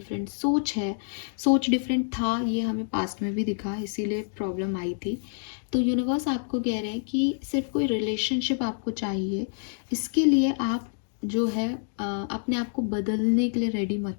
सोच है, सोच डिफरेंट था, ये हमें पास्ट में भी दिखा, इसीलिए प्रॉब्लम आई थी। तो यूनिवर्स आपको कह रहे हैं कि सिर्फ कोई रिलेशनशिप आपको चाहिए, इसके लिए आप जो है अपने आप को बदलने के लिए रेडी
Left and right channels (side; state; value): right; silent; digital silence